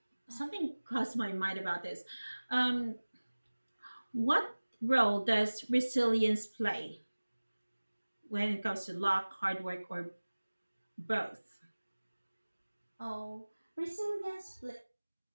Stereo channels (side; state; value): both; inverted; correlation -1.00